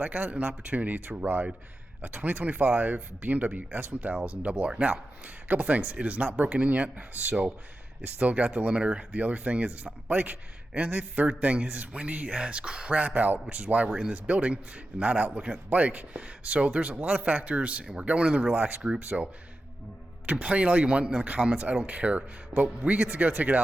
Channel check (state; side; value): normal; both; correlation 0.92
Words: I got an opportunity to ride a 2025 BMW S1000RR. Now, a couple things. It is not broken in yet, so it's still got the limiter. The other thing is it's not a bike. And the third thing is it's windy as crap out, which is why we're in this building and not out looking at the bike. So there's a lot of factors, and we're going in the relaxed group, so complain all you want in the comments, I don't care. But we get to go take it